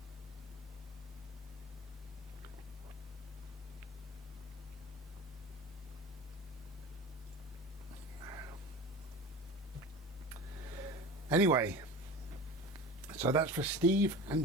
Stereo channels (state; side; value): normal; both; correlation 0.33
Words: Anyway, so that's for Steve and